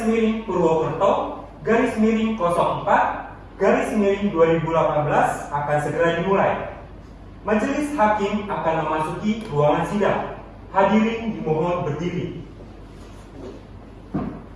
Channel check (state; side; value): identical; both; correlation 1.00